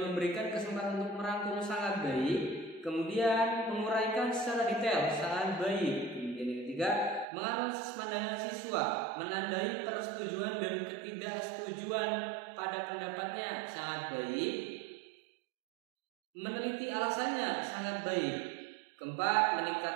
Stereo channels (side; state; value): left; drops out; at 7.2 s